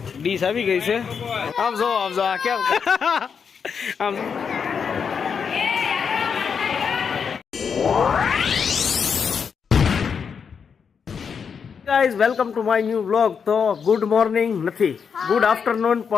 ડીશ આવી ગઈ છે. આમ જો આ કેમ આમ guys welcome to my new vlog. તો ગુડ મોર્નિંગ નથી, ગુડ આફ્ટરનૂન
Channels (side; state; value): right; quieter; 6.4 dB